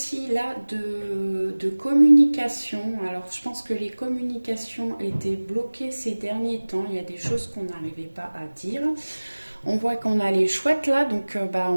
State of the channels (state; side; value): inverted; both; correlation -1.00